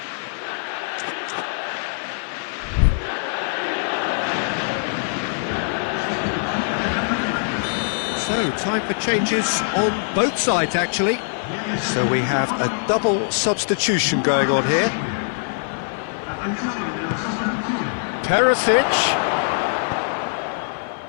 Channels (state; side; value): silent; right; 55 dB below the other